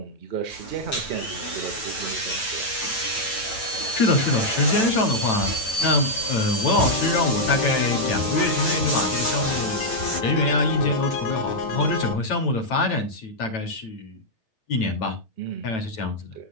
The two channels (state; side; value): late; right; 9.0 ms